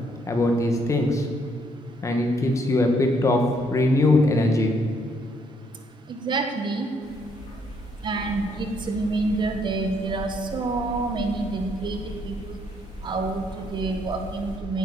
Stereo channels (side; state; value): both; normal; correlation 0.70